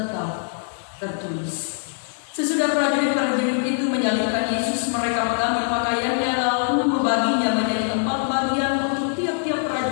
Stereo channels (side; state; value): right; silent; digital silence